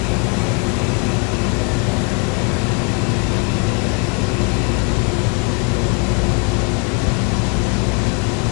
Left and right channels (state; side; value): quieter; right; 34.9 dB